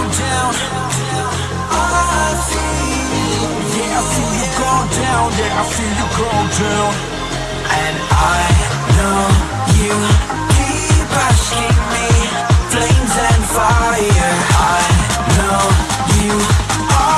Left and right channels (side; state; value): both; identical; correlation 1.00